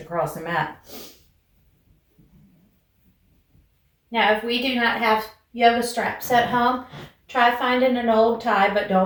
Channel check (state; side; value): identical; both; correlation 1.00